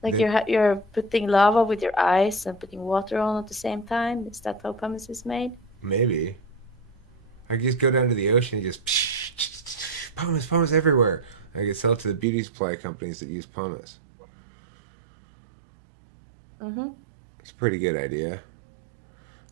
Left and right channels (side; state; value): left; drops out; at 12.2 s